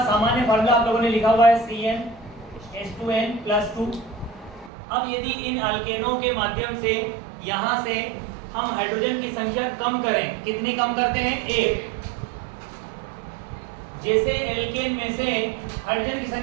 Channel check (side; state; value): left; drops out; at 4.7 s